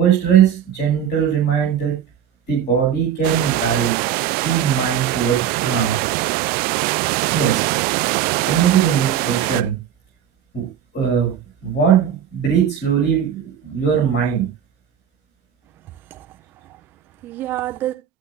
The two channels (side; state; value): left; quieter; 9.1 dB